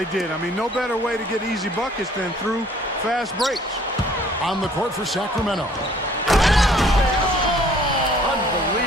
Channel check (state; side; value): normal; both; correlation 0.57